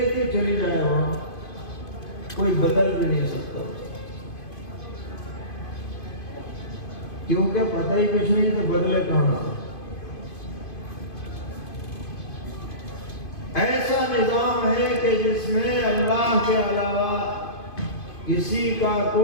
تھی چلی جائے، وہاں کوئی بدل بھی نہیں سکتا، کیونکہ پتہ ہی کچھ نہیں تو بدلے کہاں. ایسا نظام ہے کہ جس میں اللہ کے علاوہ کسی کا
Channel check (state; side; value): late; right; 2.5 ms